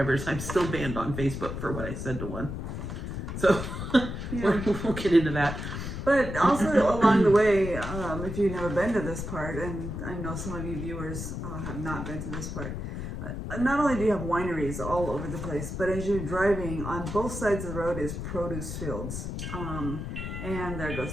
I'm still banned on Facebook for what I said to one. So we'll get into that. But also along the way, if you've never been to this part, and I know some of you viewers have not been to this part, not only do you have wineries all over the place, but as you're driving, on both sides of the road is produce fields. And there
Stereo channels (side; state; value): left; noise; rumble, 6 dB below the sound